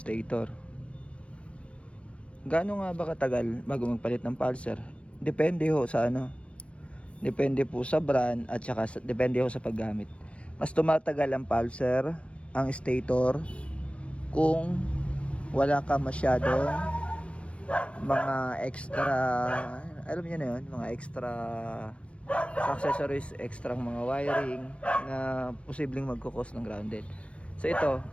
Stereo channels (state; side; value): late; right; 0.061 ms